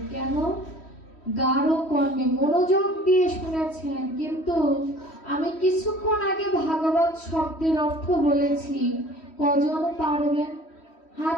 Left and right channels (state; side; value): late; right; 3.1 ms